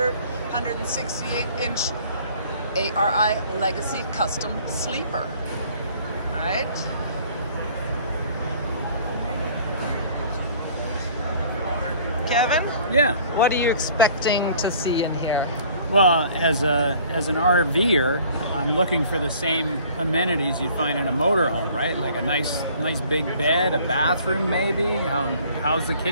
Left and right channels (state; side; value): inverted; both; correlation -0.53